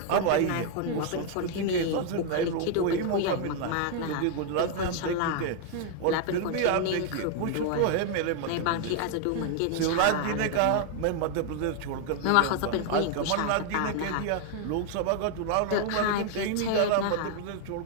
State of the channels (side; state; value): both; different; correlation 0.00